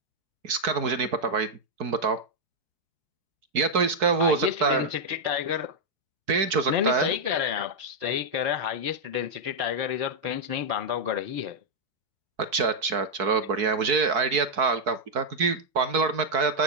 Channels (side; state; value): left; late; 4.6 ms